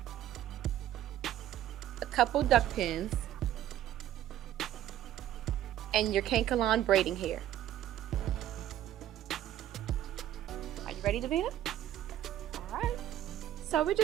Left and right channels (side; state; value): left; quieter; 12.2 dB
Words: a couple duck pins, and your cankalon braiding hair. Are you ready, Davina? Alright, so we're